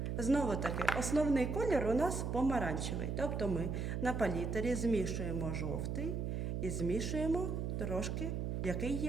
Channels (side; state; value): right; noise; hum, 1 dB below the sound